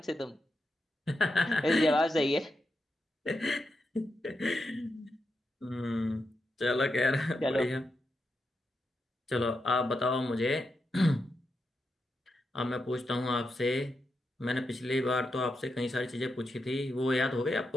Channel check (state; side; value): normal; both; correlation 0.86